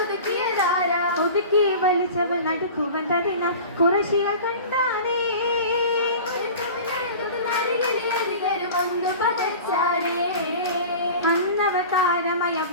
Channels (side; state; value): both; inverted; correlation -0.37